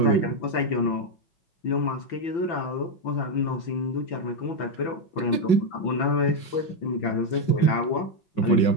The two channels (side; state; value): right; late; 5.4 ms